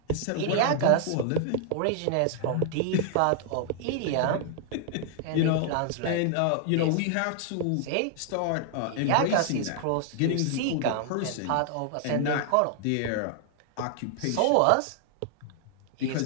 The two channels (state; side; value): different; both; correlation 0.00